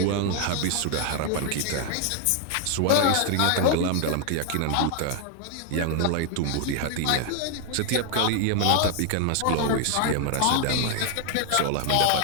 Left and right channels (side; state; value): both; different; correlation 0.00